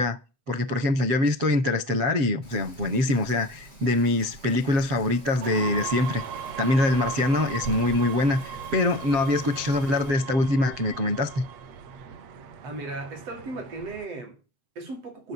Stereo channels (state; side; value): late; left; 7.8 ms